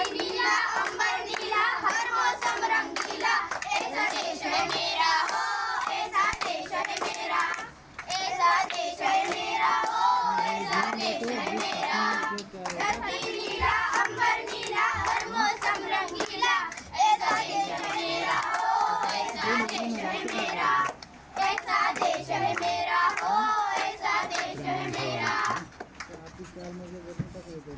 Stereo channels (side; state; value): both; identical; correlation 1.00